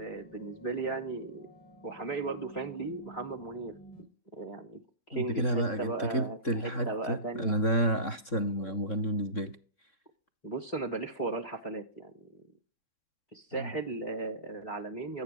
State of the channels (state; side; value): late; right; 3.6 ms